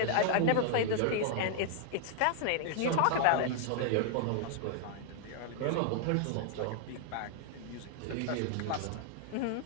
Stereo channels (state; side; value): different; both; correlation 0.00